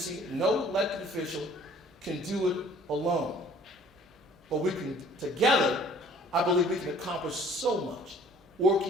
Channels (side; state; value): both; normal; correlation 0.54